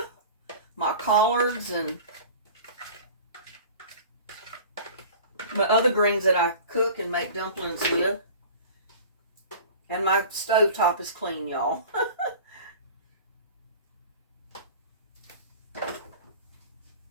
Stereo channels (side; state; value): both; inverted; correlation -0.40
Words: collards and my other greens that I cook and make dumplings with. And my stovetop is clean, y'all. I